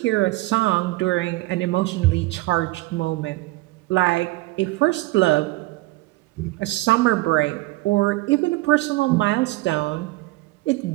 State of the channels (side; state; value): left; quieter; 20.1 dB